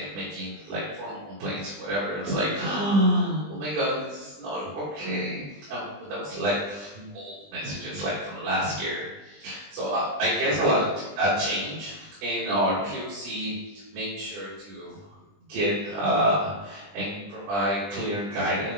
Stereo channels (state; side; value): late; left; 20 ms